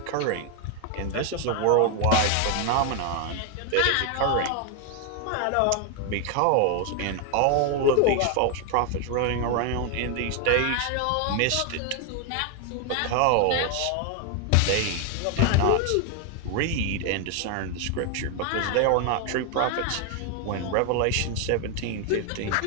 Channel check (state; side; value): different; both; correlation 0.01